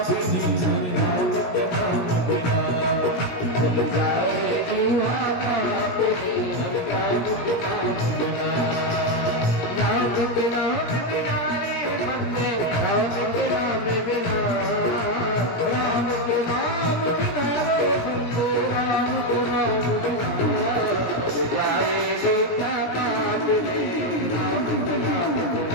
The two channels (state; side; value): late; right; 17 ms